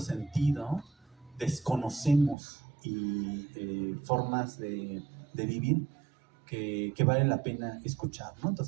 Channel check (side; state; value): left; drops out; at 2.4 s